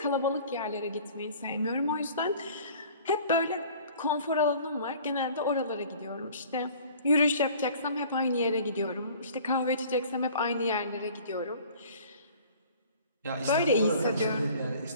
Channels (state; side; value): inverted; both; correlation -0.49